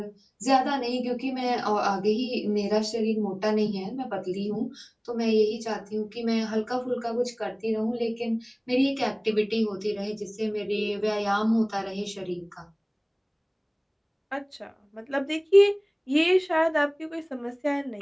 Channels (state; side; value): identical; both; correlation 1.00